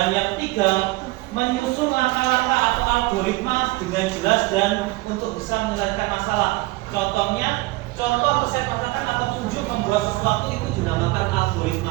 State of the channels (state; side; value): quieter; left; 21.2 dB